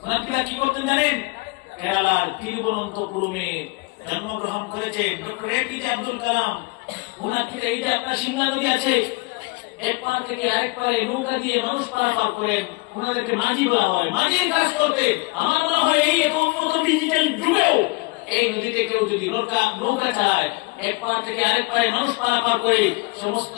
ওনারা কি করতেন জানেন? কেরালার তিরুবনন্তপুরমে জন্মগ্রহণ করেছে ডক্টর এপিজে আব্দুল কালাম। ওনার এই যে আপনার সিমলা নদী আছে, এক পার থেকে আরেক পারে নৌকা দিয়ে মানুষ পারাপার করেন, ওনাদেরকে মাঝি বলা হয়। মাঝির কাজ করতে আমার মনে হয় এই উন্নত ডিজিটাল যুগেও এই নদীতে কেউ যদি নৌকা চালায়, এক পার থেকে আরেক পারে মানুষ পারাপার করে সমস্ত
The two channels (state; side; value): quieter; right; 25.8 dB